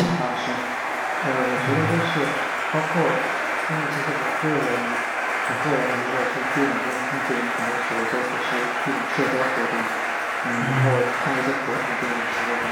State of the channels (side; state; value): both; identical; correlation 1.00